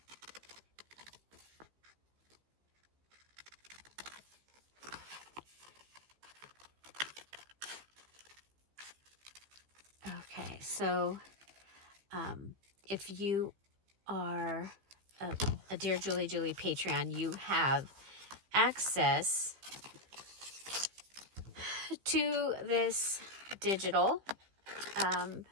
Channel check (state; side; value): late; left; 15 ms